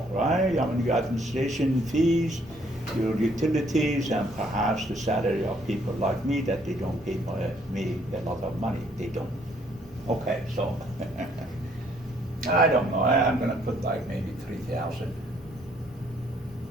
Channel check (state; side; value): normal; both; correlation 0.66